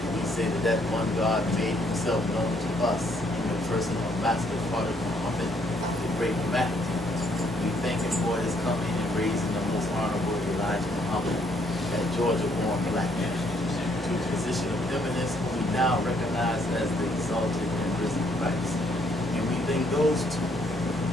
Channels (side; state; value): both; normal; correlation 0.68